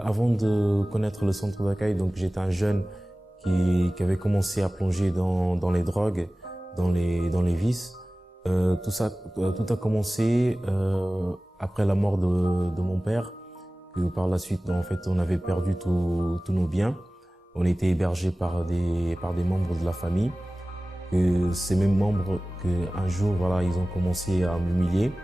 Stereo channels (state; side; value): normal; both; correlation 0.97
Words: de connaître le centre d'accueil, donc j'étais un jeune qui avait commencé à plonger dans les drogues, dans les vices. Tout a commencé après la mort de mon père, que par la suite, en fait, on avait perdu tous nos biens. On était hébergés par des membres de la famille. Que ces mêmes membres, qu'un jour, voilà, ils ont commencé à m'humilier,